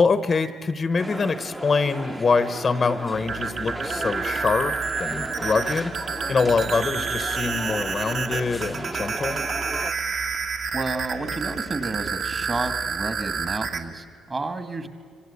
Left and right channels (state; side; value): normal; both; correlation 0.84